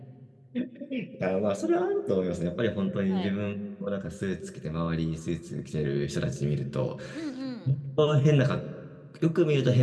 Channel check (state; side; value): identical; both; correlation 1.00